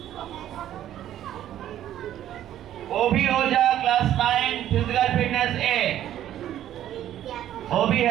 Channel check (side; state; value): left; quieter; 11.8 dB